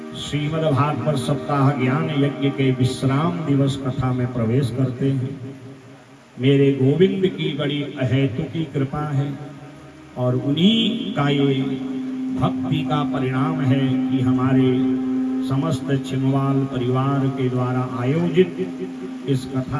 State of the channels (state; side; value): identical; both; correlation 1.00